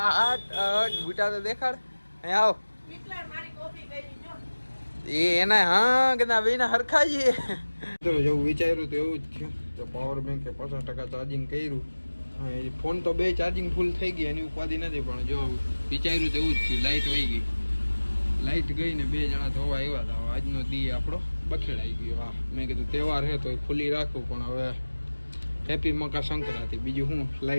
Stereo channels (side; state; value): both; inverted; correlation -1.00